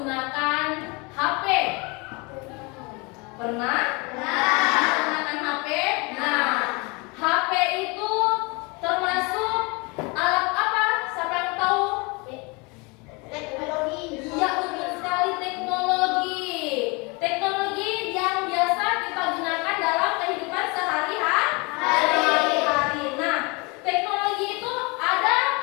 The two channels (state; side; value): quieter; right; 28.3 dB